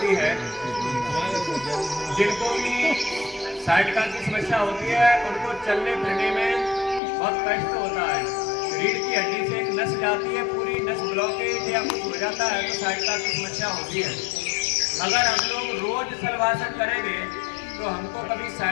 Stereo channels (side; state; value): right; drops out; at 7.0 s